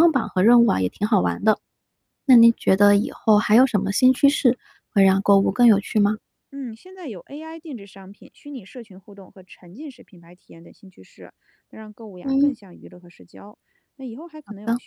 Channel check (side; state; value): both; identical; correlation 1.00